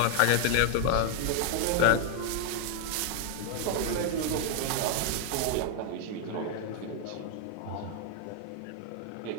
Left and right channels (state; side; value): different; both; correlation 0.00